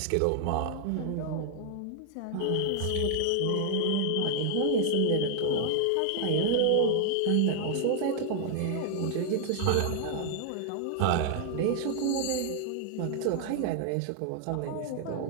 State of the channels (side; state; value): both; different; correlation 0.00